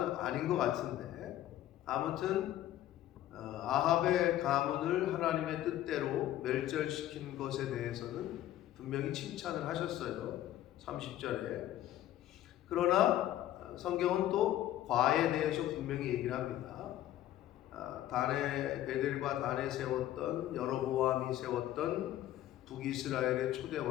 아닌 것 같은데 아무튼 아합의 가문을 하나님의 뜻대로 멸절시킨 것에 대해서는 분명히 칭찬을 하셨어요. 30절에. 그러나 성경은 또 과에 대해서 분명히 얘기를 합니다. 베델과 단에 세웠던 여로보암이 세웠던 북이스라엘의 초대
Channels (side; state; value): right; quieter; 13.3 dB